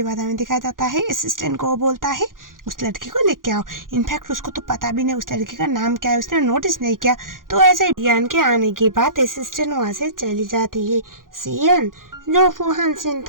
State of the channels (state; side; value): late; left; 0.90 ms